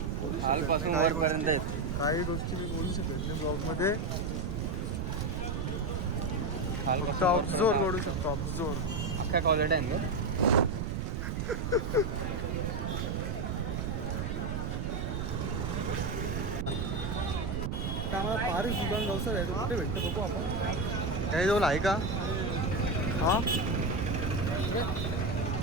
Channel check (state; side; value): noise; right; rumble, 1 dB below the sound